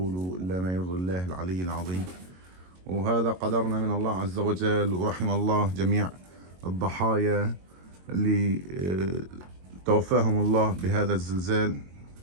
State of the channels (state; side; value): late; left; 22 ms